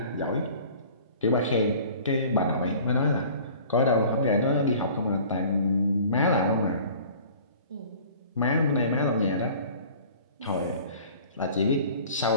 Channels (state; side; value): inverted; both; correlation -0.46